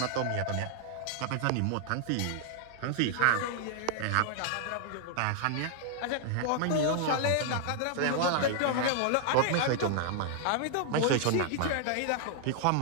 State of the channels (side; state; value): both; different; correlation 0.00